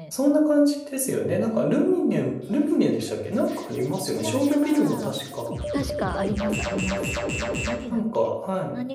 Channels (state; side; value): identical; both; correlation 1.00